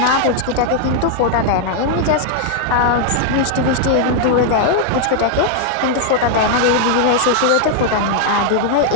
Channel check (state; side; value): different; both; correlation 0.00